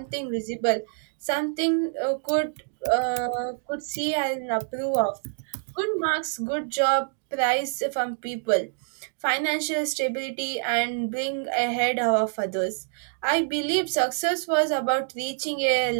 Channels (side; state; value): left; silent; digital silence